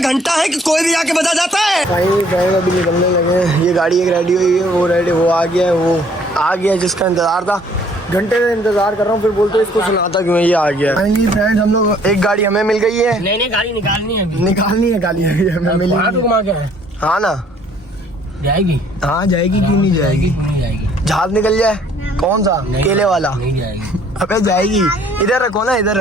घंटा है कि कोई भी आके बजा जाता है। भाई अभी निकलने लगे हैं। ये गाड़ी एक रेडी हुई है, वो आ गया है, वो आ गया जिसका इंतजार था। घंटे से इंतजार कर रहा हूँ, फिर बोलते इसको सुनाता क्यों है, ये आ गया। फाइनली फ्रेंड्स हम लोग, एक गाड़ी हमें मिल गई है। नहीं गाड़ी निकालनी है, निकालनी है गाड़ी हमें मिली। हाँ ना जाएगी। हाँ जाएगी, क्यों नहीं जाएगी। जहाज निकल जाए कौन सा, केले वाला। नहीं जाएगी। अबे जाएगी, इधर रखो ना, इधर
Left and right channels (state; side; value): normal; both; correlation 0.60